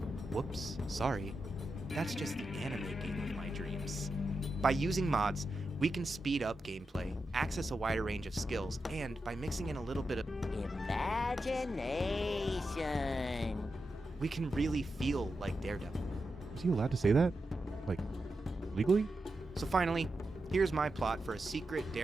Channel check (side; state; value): both; normal; correlation 0.88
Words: whoops, sorry. That's just the anime game of my dreams. By using mods, we can speed up gameplay, access a wider range of skills, and by mixing in a little bit of imagination, we can really feel like Daredevil. Is he allowed to say that? Like, legally? So finally, here's my plot for a secret